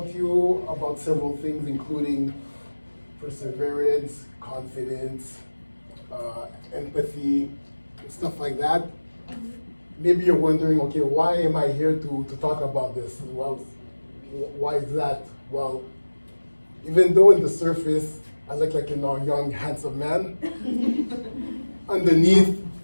to you about several things, including perseverance, confidence, empathy, stuff like that. Maybe you're wondering, okay, why am I here to talk about this? Well, why is that? Well, even though in the surface, I look like a young, handsome man, underneath,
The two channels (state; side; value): inverted; both; correlation -1.00